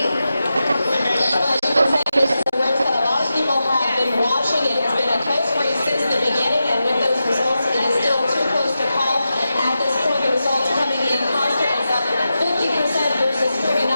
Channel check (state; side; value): inverted; both; correlation -0.90